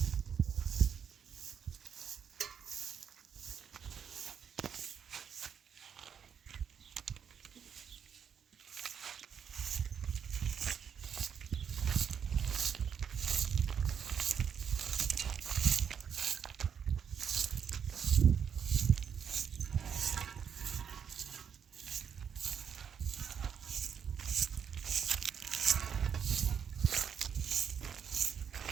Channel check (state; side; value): quieter; left; 7.6 dB